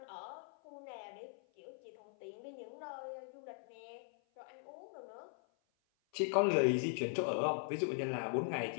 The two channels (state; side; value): silent; right; 51 dB below the other